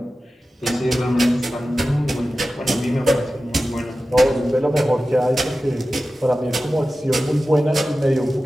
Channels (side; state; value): both; normal; correlation 0.94